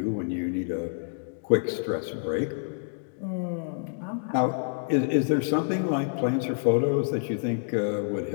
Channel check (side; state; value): right; silent; digital silence